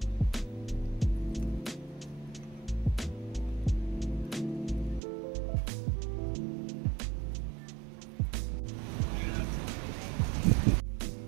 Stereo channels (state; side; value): drops out; left; at 5.0 s